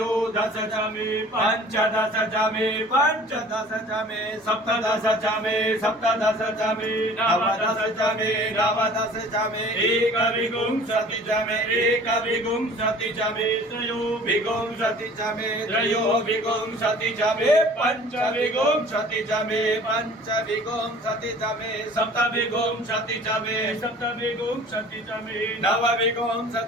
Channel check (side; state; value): both; normal; correlation 0.48